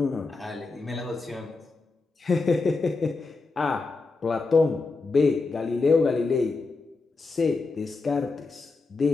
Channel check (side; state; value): right; quieter; 3.9 dB